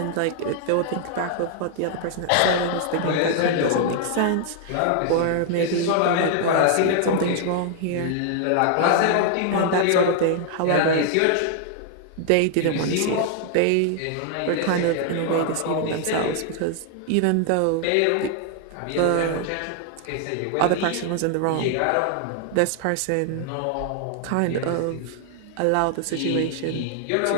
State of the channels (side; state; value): both; different; correlation 0.00